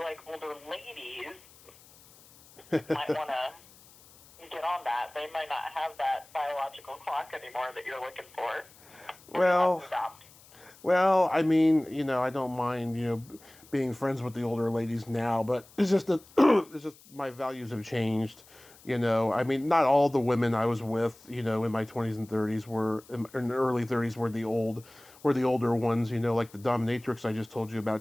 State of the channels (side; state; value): left; noise; hiss, 25 dB below the sound